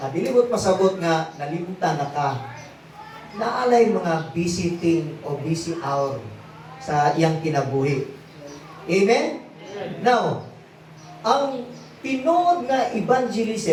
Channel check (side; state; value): both; identical; correlation 1.00